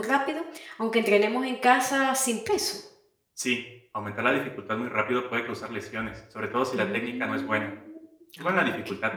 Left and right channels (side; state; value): both; identical; correlation 1.00